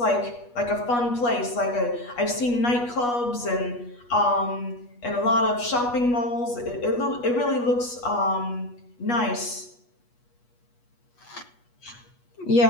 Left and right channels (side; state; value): right; late; 8.3 ms